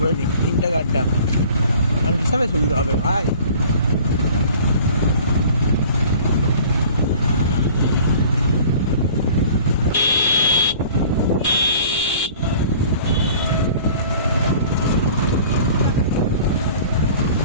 নিই, তিনটে গাড্ডা হিসাবে সুবিধা হবে ভাই।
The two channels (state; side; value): inverted; both; correlation -0.47